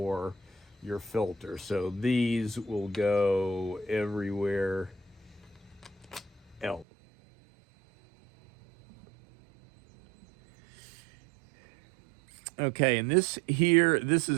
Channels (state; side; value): drops out; left; at 6.9 s